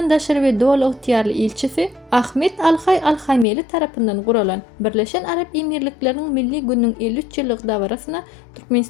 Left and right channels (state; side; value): drops out; right; at 3.5 s